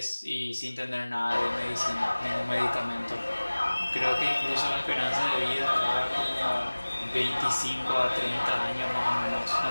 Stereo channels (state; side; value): inverted; both; correlation -1.00